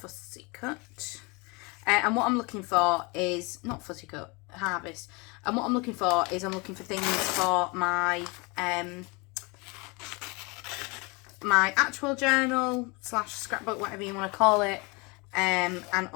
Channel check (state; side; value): quieter; right; 28.2 dB